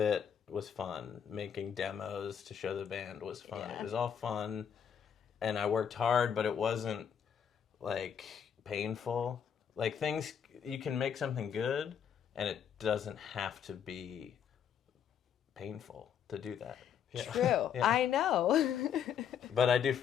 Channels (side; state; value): right; quieter; 8.2 dB